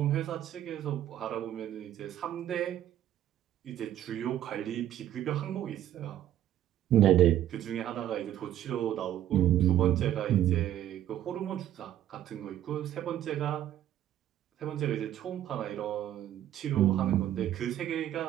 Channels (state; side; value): quieter; left; 11.8 dB